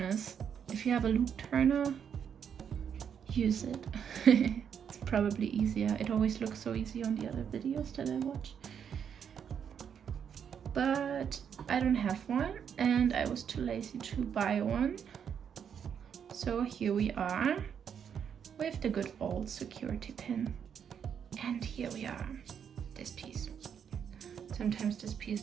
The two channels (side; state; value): left; quieter; 7.8 dB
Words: If you have a loop turner, use it. It's probably easier. It always looks so easy on the other videos that I watch. But I don't have one and I was too lazy to buy one. So here we are with the good old security pin. And here we are, this piece. Sometimes this piece